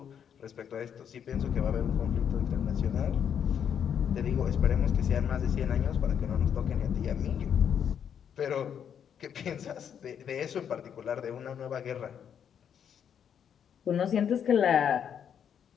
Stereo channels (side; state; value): right; quieter; 8.3 dB